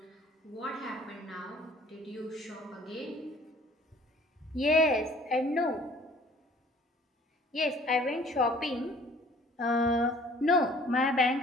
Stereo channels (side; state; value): both; normal; correlation 0.53